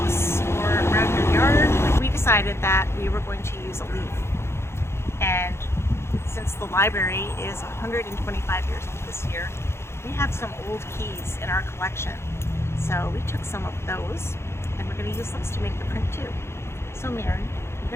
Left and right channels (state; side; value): late; right; 0.12 ms